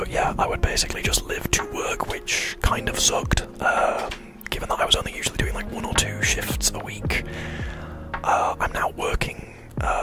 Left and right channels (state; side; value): identical; both; correlation 1.00